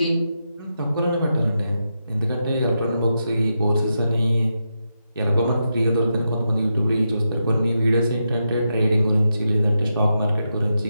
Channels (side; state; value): both; inverted; correlation -0.85